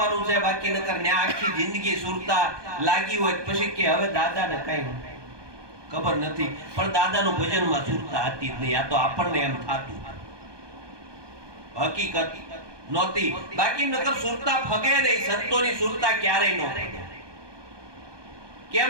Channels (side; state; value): left; late; 1.2 ms